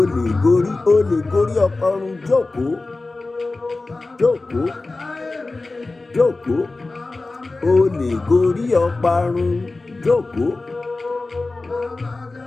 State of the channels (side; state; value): right; quieter; 3.3 dB